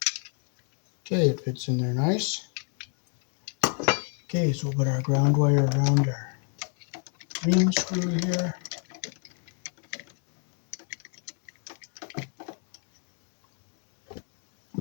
Okay, it fits in there nice. Okay, so we'll put our ground wire around our green screw here.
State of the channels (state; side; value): quieter; right; 39.1 dB